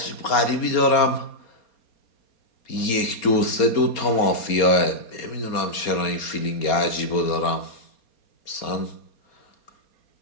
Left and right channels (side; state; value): right; late; 4.3 ms